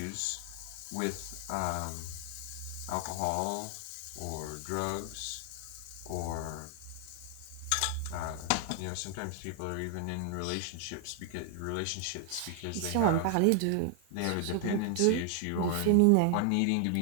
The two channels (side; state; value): both; different; correlation 0.00